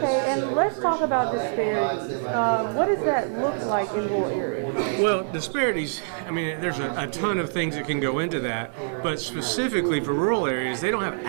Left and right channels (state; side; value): silent; left; digital silence